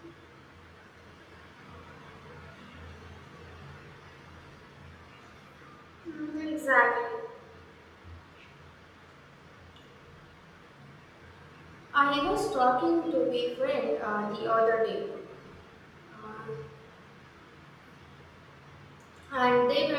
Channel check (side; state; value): both; identical; correlation 1.00